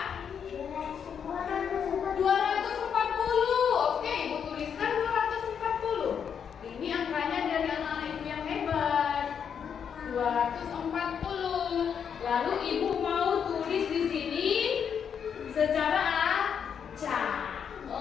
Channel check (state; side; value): quieter; right; 7.5 dB